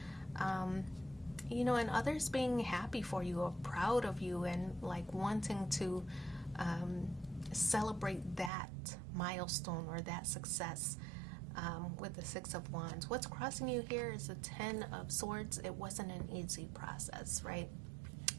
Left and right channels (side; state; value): left; drops out; at 8.5 s